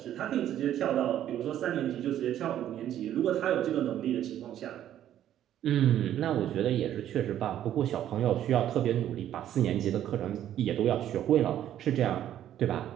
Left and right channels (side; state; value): left; quieter; 11.4 dB